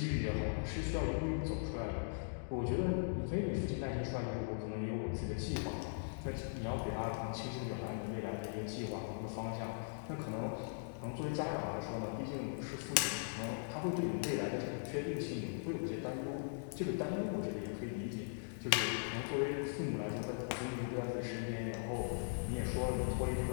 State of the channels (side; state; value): right; silent; digital silence